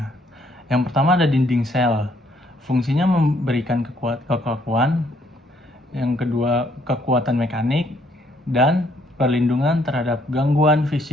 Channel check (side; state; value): both; normal; correlation 0.68